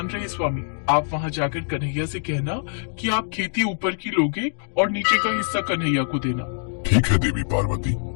रहे स्वामी, आप वहाँ जाकर कन्हैया से कहना कि आप खेती ऊपर की लोगे और नीचे का हिस्सा कन्हैया को देना। ठीक है देवी पार्वती,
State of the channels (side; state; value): right; silent; digital silence